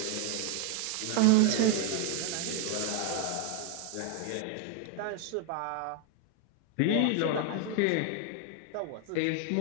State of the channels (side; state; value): both; different; correlation 0.01